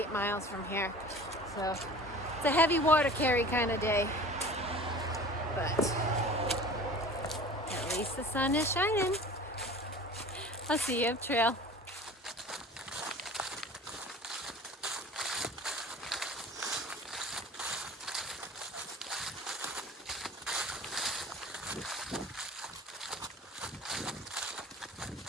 miles from here. So it's a heavy water carry kind of day. But at least the sun is shining. I'll see you up trail.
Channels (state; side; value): normal; both; correlation 0.42